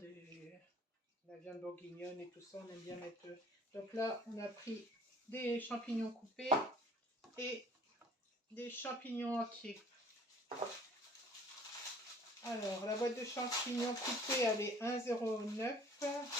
bourguignonne et tout ça, on aime bien mettre. Donc là, on a pris des champignons coupés et des champignons entiers. Alors, la boîte de champignons coupés, elle est 1,09.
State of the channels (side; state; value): both; normal; correlation 0.52